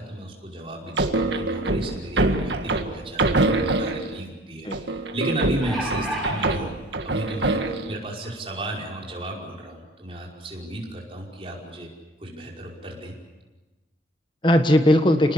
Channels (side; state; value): both; normal; correlation 0.51